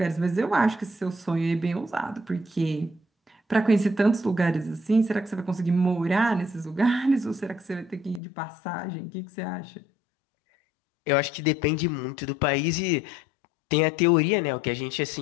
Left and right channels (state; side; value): drops out; right; at 8.2 s